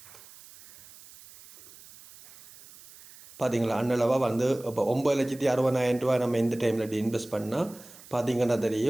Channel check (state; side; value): noise; right; hiss, 21 dB below the sound